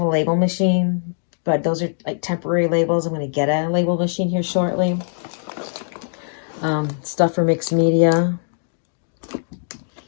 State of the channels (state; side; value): silent; right; digital silence